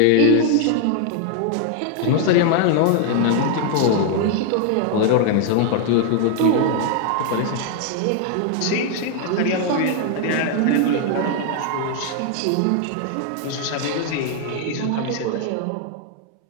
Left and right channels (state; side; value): different; both; correlation 0.00